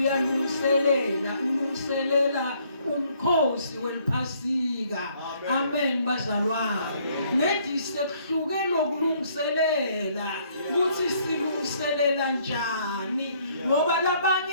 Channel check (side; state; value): both; inverted; correlation -0.65